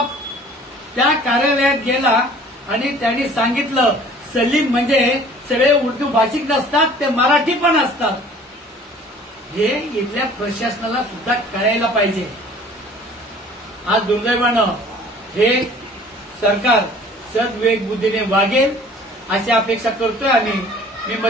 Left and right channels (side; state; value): both; normal; correlation 0.50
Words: त्या कार्यालयात गेला आणि त्यांनी सांगितलं सलीम म्हणजे सगळे उर्दू भाषिक नसतात, ते मराठी पण असतात. हे इथल्या प्रशासनाला सुद्धा कळायला पाहिजे. आज दुर्दैवानं हे सरकार सद्विवेक बुद्धीने वागेल अशी अपेक्षा करतोय. आणि मी